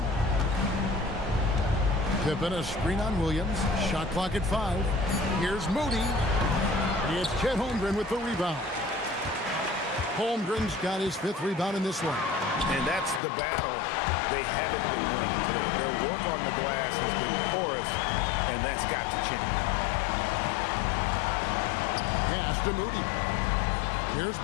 Pippen a screen on Williams. Shot clock at 5. Here's Moody. It's Chet Holmgren with the rebound. Holmgren's got his 5th rebound in this one. And that's the battle they haven't been winning today. Their work on the glass has been porous, and that's got to change. Pass to Moody. Here's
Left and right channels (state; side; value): drops out; right; at 13.2 s